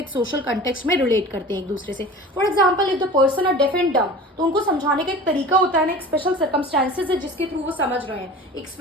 सोशल कंटेक्स्ट में रिलेट करते हैं एक दूसरे से। For example if the person are deaf and dumb, तो उनको समझाने का एक तरीका होता है ना, एक स्पेशल सर्कमस्टांसेस है जिसके थ्रू वो समझ रहे हैं, एक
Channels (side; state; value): both; normal; correlation 0.38